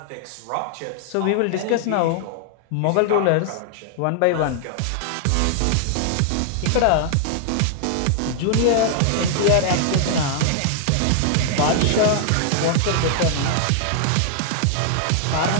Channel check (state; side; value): different; both; correlation -0.01